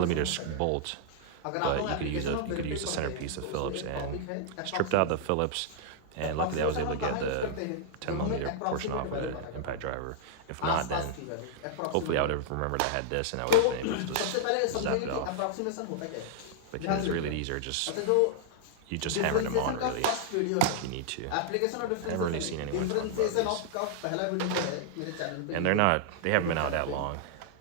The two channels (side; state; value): both; different; correlation -0.01